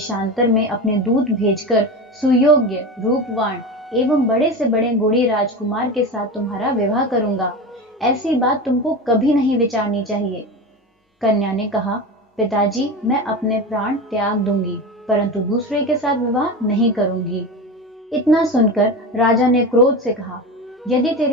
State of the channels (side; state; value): both; normal; correlation 0.25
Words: में अपने दूत भेजकर सुयोग्य, रूपवान एवं बड़े से बड़े गुणी राजकुमार के साथ तुम्हारा विवाह करूंगा, ऐसी बात तुमको कभी नहीं विचारनी चाहिए। कन्या ने कहा, पिताजी, मैं अपने प्राण त्याग दूंगी, परंतु दूसरे के साथ विवाह नहीं करूंगी। इतना सुनकर राजा ने क्रोध से कहा, यदि